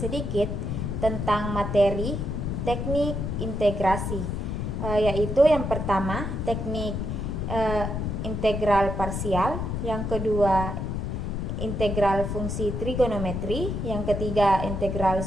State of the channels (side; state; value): left; noise; rumble, 2 dB below the sound